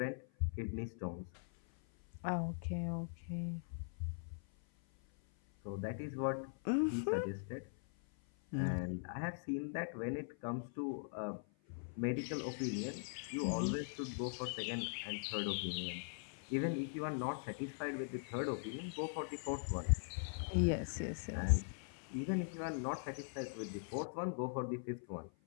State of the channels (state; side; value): silent; right; 50 dB below the other